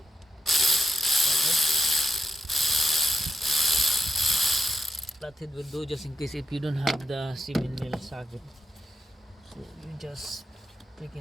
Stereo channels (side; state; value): both; normal; correlation 0.81